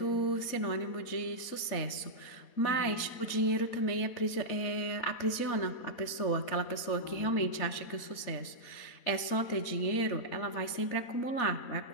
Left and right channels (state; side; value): late; right; 4.1 ms